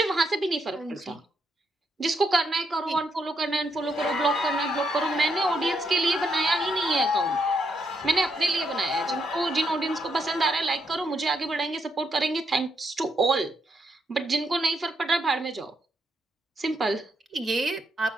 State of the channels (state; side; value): normal; both; correlation 0.78